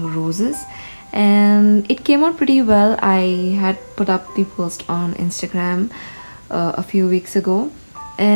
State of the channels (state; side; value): inverted; both; correlation -1.00